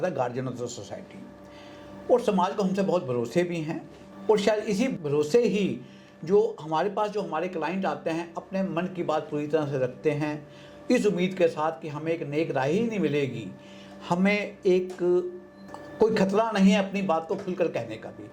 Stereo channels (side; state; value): both; identical; correlation 1.00